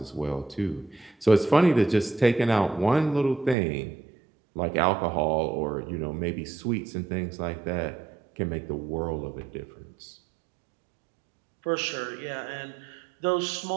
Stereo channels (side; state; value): left; drops out; at 3.6 s